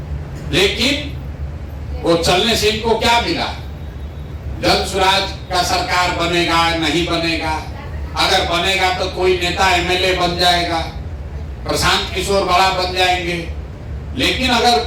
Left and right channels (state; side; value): identical; both; correlation 1.00